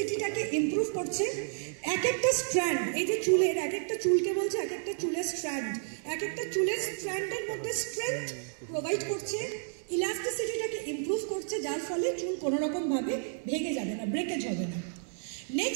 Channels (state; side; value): silent; left; digital silence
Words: ইমপ্রুভ করছে। এক একটা স্ট্র্যান্ড, এই যে চুলের এক একটা চুলকে বলছে এক একটা চুলের স্ট্র্যান্ড, এক একটা চুলের স্ট্র্যান্ডের মধ্যে স্ট্রেংথ প্রোভাইড করছে, ইলাস্টিসিটিটাকে ইমপ্রুভ করছে, যার ফলে চুল কোনো রকমভাবে ভেঙে যাবে না, ব্রেকেজ হবে না।